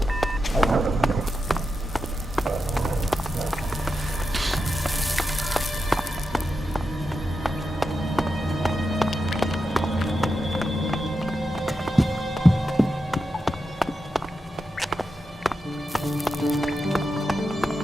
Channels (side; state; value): both; normal; correlation 0.88